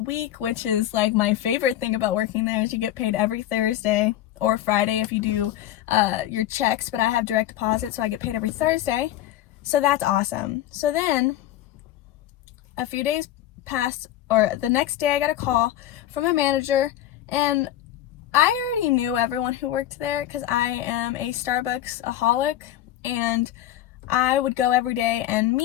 week, which is like my favorite thing about working there, is you get paid every Thursday or Friday if you do your checks, but I have direct deposit, so I get paid every Thursday. So that's awesome. So then a few days passed, or the next day I got a call from a manager, and I already knew everyone who worked there because I am a Starbucks-aholic, and I would go every day, and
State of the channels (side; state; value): right; quieter; 12.8 dB